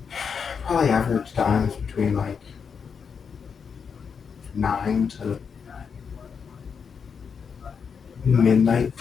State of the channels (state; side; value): quieter; right; 6.3 dB